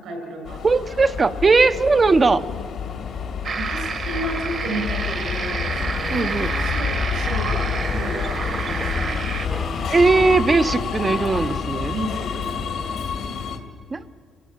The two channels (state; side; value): normal; both; correlation 0.83